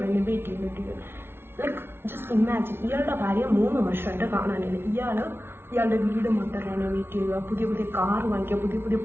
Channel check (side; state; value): left; late; 0.11 ms